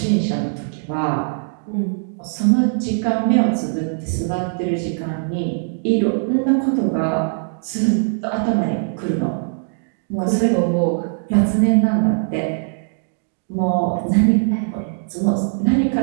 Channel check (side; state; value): left; silent; digital silence